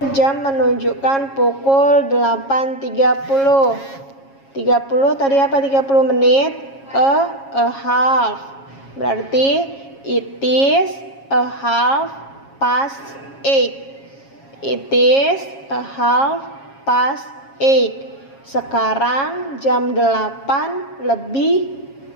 jam menunjukkan pukul 8.30. 30 tadi apa 30 menit? A half. Berarti it is a half past 8. It is a half past 8. Sekarang jam 8 lebih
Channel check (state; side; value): late; right; 7.3 ms